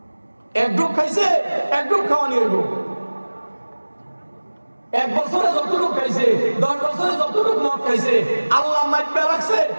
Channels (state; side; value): inverted; both; correlation -1.00